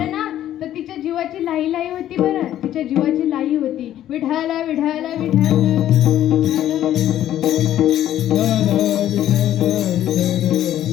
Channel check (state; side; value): quieter; right; 12.1 dB